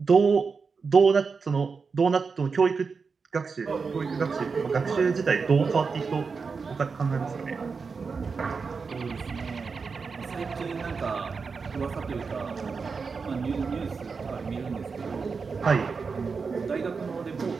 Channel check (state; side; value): quieter; left; 5.0 dB